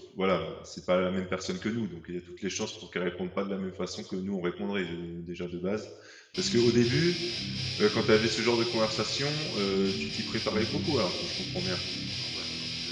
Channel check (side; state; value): both; identical; correlation 1.00